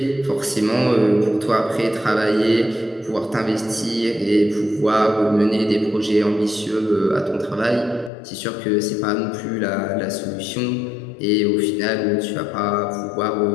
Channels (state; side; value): drops out; right; at 8.1 s